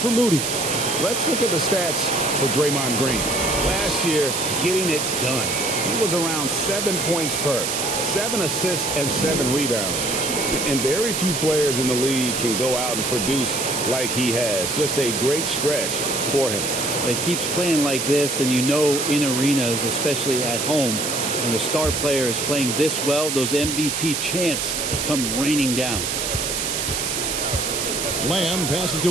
Moody. Let's look at the stats for Draymond Green. Last year, getting it done. He was around 7 points per, 7 assists, and 7 rebounds. And very few players in the league can go out and produce like he has. Just a great stretch for him. He keeps playing like this, and you know in arenas, especially at home, when a star player is playing this well, those MVP chants come raining down. Lamb passes to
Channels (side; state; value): right; noise; hiss, 1 dB below the sound